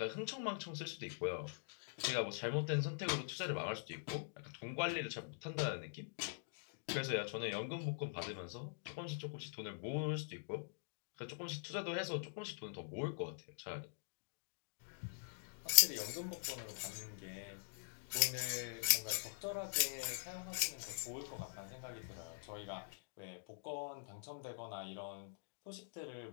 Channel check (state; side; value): silent; right; digital silence